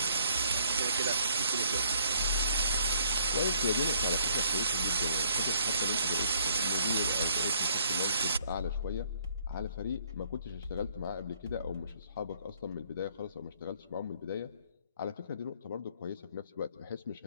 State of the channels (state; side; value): inverted; both; correlation -0.64